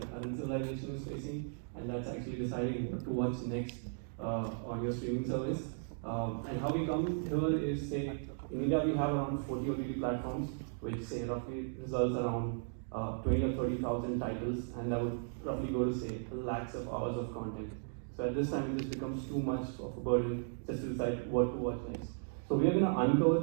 a current civilization is facing, and that's actually deciding what to watch next on your streaming service. And how we come here is, say, in India we have around 40 OTT platforms, which say roughly results around 20 or 30,000 titles, and that would roughly go to say lakhs of hours of content. So at this time, it just becomes too much of a burden just to decide what to watch next. So we are going to uncover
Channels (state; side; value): silent; left; digital silence